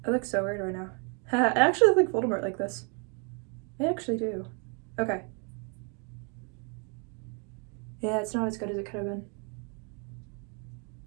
I look so weird right now. I actually look like Voldemort like this. I actually do. Okay. Yeah, it's not as good as it could have been.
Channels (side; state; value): left; quieter; 36.7 dB